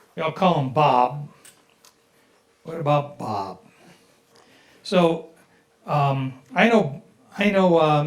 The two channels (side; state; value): both; identical; correlation 1.00